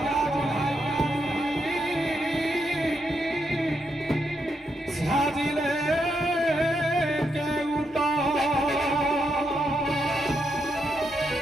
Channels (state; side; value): normal; both; correlation 0.81